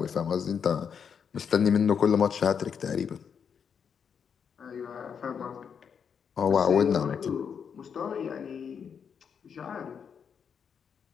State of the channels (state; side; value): quieter; right; 7.0 dB